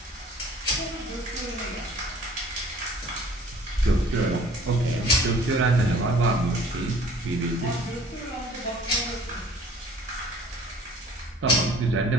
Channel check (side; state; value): both; normal; correlation 0.52